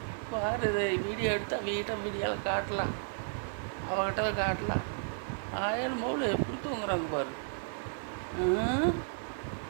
பாரு, இதை வீடியோ எடுத்தால் வீடியோவில் காட்டலாம், அவகிட்ட காட்டலாம். 1000 மௌல எப்படி தூங்குறாங்க பாரு.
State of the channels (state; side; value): silent; left; 56 dB below the other